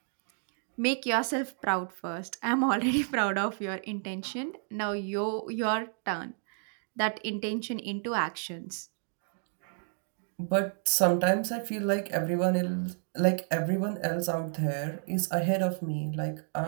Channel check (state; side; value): silent; left; 57 dB below the other